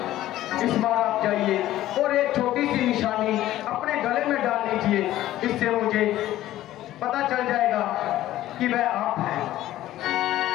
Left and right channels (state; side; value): quieter; right; 14.3 dB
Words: इस बार आप जाइए और एक छोटी सी निशानी अपने गले में डाल लीजिए, इससे मुझे पता चल जाएगा कि वह आप हैं।